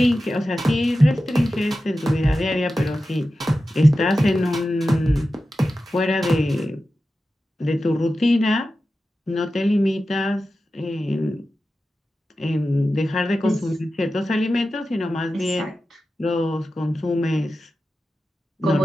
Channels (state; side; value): normal; both; correlation 0.93